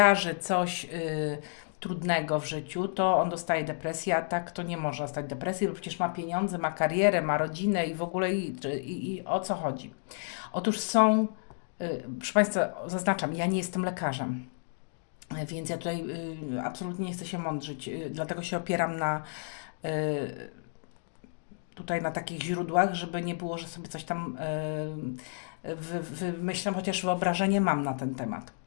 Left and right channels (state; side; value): silent; right; digital silence